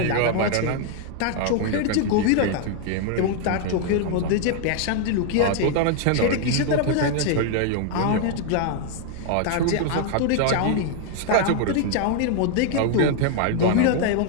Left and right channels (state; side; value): different; both; correlation 0.00